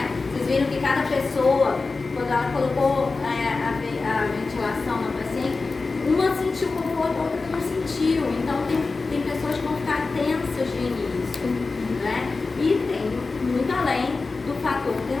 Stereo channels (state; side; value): quieter; right; 3.9 dB